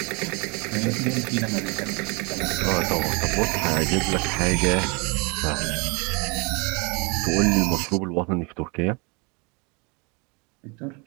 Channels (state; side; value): quieter; left; 30.7 dB